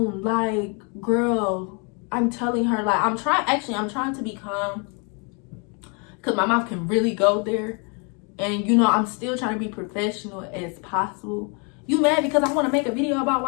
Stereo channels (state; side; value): quieter; right; 35.2 dB